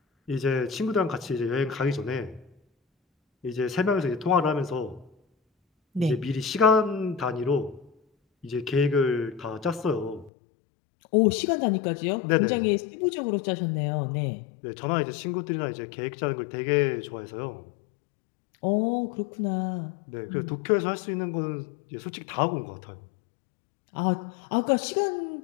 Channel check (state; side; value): drops out; right; at 10.3 s